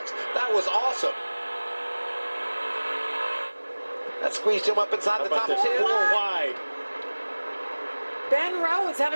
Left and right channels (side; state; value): both; inverted; correlation -1.00